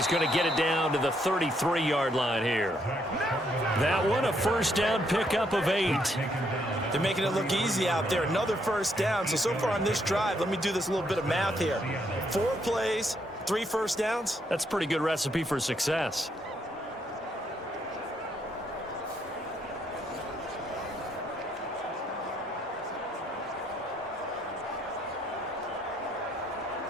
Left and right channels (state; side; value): normal; both; correlation 0.73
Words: going to get it down to the 33-yard line here. That one, a first down pickup of 8. They're making it look easy out there. Another first down. So far on this drive, let me do this little bit of math here. 4 plays, 3 first downs. That's a pretty good recipe for success.